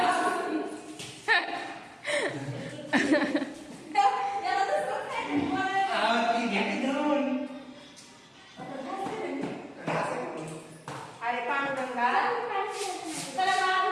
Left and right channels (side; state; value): both; identical; correlation 1.00